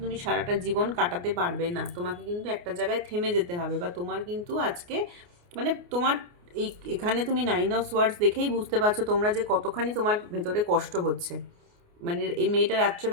তুমি সারাটা জীবন কাটাতে পারবে না। তোমাকে কিন্তু একটা জায়গায় থেমে যেতে হবে, বা তোমার কিন্তু আজকে মানে তোমার এখানে তুমি 9 অফ ওয়ার্ডস দেখেই বুঝতে পারছো তোমরা যে কতখানি তোমার ভেতরে কষ্ট হচ্ছে। মানে এই মেয়েটা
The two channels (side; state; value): left; late; 29 ms